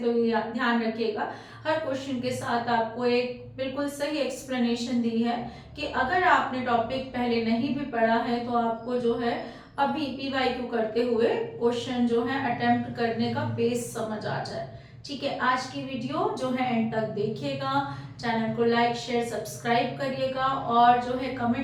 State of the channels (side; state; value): both; identical; correlation 1.00